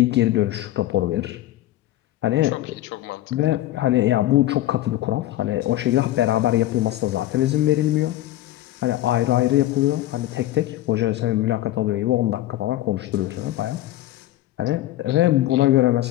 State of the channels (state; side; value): quieter; right; 14.8 dB